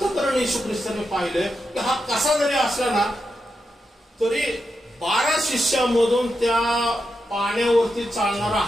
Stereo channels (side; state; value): both; normal; correlation 0.87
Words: येशू ख्रिस्ताने पाहिलंय की हा कसा जरी असला ना तरी 12 शिष्यामधून त्या पाण्यावरती चालणारा